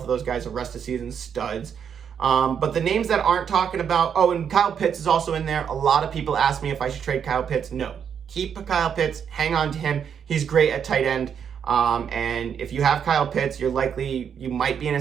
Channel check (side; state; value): left; quieter; 7.7 dB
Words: of those guys are rest of season studs. But the names that aren't talking about, and Kyle Pitts is also in there. A lot of people ask me if I should trade Kyle Pitts. No, keep Kyle Pitts, hang on to him. He's great at tight end. And if you have Kyle Pitts, you might be in a